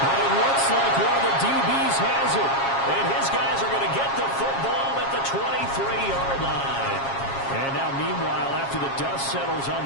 But it looks like one of the DBs has it. And his guys are going to get the football at the 23-yard line. And now, meanwhile, after the dust settles on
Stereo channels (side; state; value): right; late; 7.3 ms